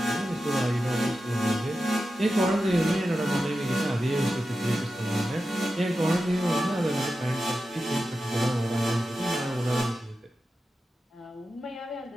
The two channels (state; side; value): normal; both; correlation 0.92